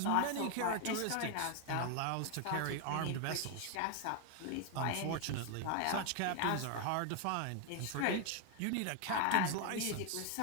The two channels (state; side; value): different; both; correlation 0.01